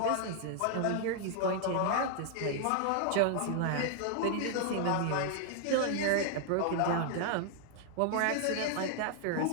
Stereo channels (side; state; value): both; different; correlation 0.00